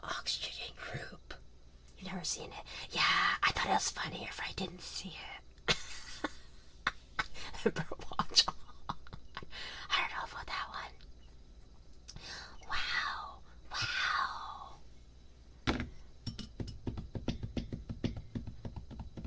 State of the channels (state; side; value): identical; both; correlation 1.00